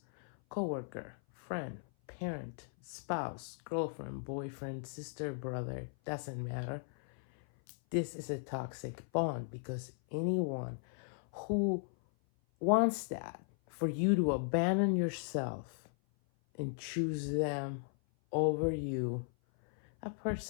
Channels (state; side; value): silent; right; 53 dB below the other